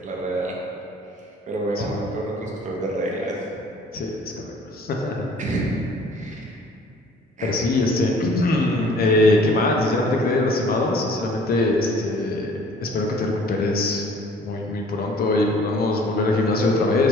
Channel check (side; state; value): both; normal; correlation 0.53